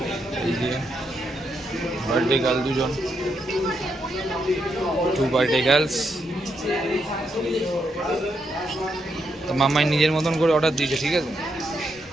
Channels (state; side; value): normal; both; correlation 0.80